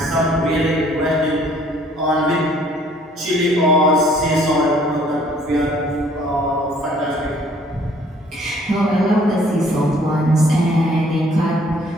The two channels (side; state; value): both; normal; correlation 0.59